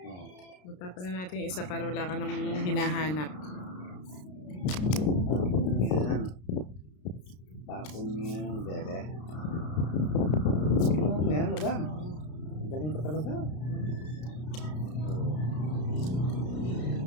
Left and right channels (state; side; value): late; right; 33 ms